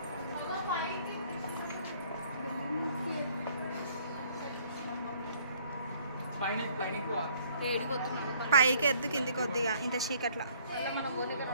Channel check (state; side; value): inverted; both; correlation -0.60